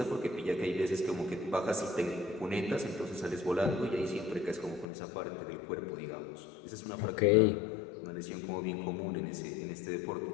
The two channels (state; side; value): drops out; right; at 4.9 s